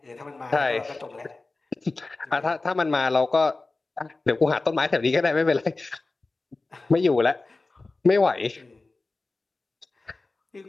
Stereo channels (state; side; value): quieter; right; 3.4 dB